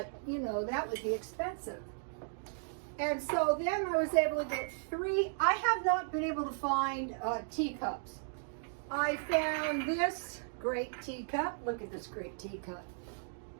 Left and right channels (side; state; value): left; silent; digital silence